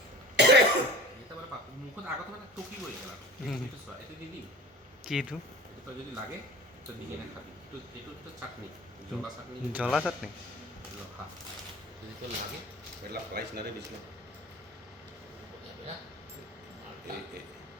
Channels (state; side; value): normal; both; correlation 0.41